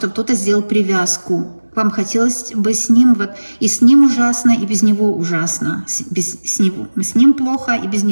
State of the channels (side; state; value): both; inverted; correlation -1.00